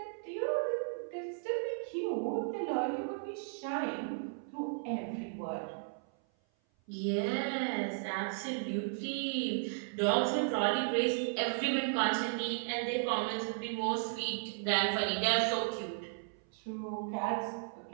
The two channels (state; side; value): silent; left; 54 dB below the other